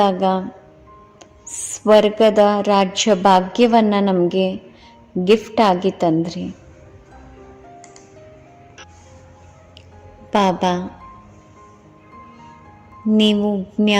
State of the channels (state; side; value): identical; both; correlation 1.00